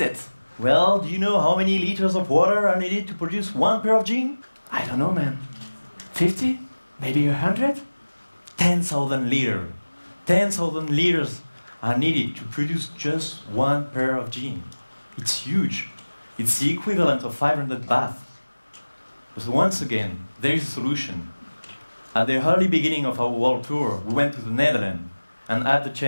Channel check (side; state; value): both; inverted; correlation -1.00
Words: Well, do you know how many liters of water are needed to produce one pair of jeans? I don't know, man. 50? Maybe 100? 10,000 liters. 10,000 liters are needed to produce just one pair of jeans. It's huge. It's the equivalent of 500 baths. But once again, there is a solution. At the early beginning of our world tour, we went to the Netherlands and had the